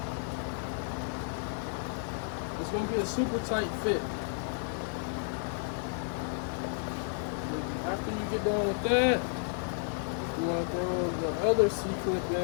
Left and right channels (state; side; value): silent; right; digital silence